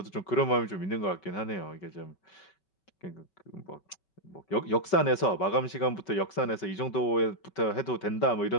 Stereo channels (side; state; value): right; late; 5.3 ms